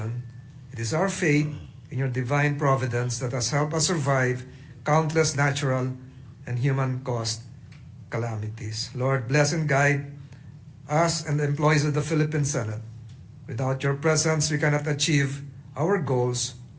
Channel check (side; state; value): both; identical; correlation 1.00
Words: It is our faith in your divine providence that has helped us survive countless natural and human-caused calamities. Lord, bless and guide us and the employees of the Philippine Senate. Without your presence, we cannot achieve our goals